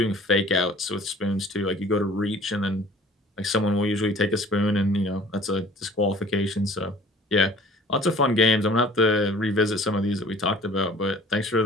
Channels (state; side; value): normal; both; correlation 0.50